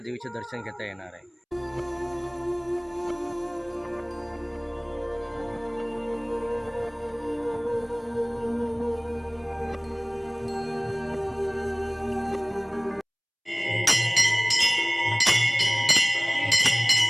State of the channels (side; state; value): both; identical; correlation 1.00